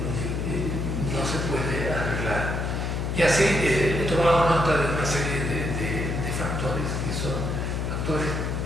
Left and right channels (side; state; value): left; noise; hum, 1 dB below the sound